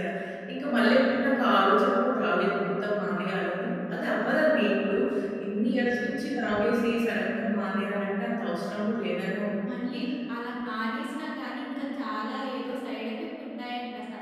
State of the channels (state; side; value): identical; both; correlation 1.00